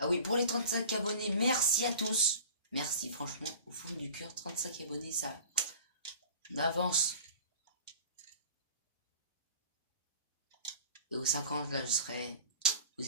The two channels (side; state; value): both; inverted; correlation -0.42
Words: oui, pour les 35 abonnés, merci à tous. Merci, franchement, au fond du cœur, 35 abonnés, ça... On avance. Et aux 50, là, je serai... Vous